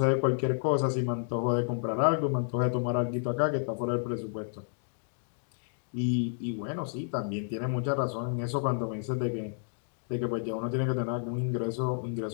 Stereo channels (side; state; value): right; silent; digital silence